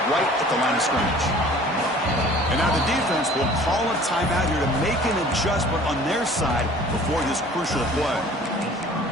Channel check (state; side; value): normal; both; correlation 0.49